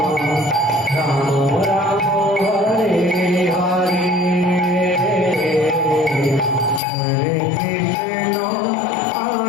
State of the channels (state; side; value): drops out; right; at 6.8 s